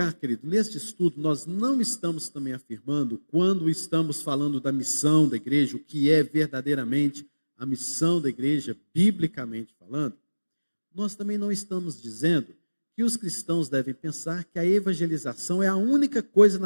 querido, neste estudo nós não estamos também afirmando, quando estamos falando da missão da igreja, o que é verdadeiramente a missão da igreja, biblicamente falando, nós também não estamos dizendo que os cristãos devem pensar que a evangelização é a única coisa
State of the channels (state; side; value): inverted; both; correlation -1.00